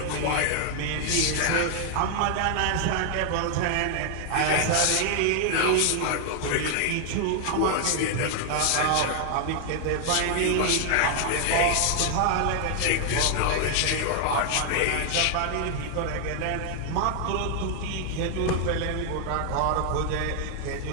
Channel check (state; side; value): different; both; correlation 0.00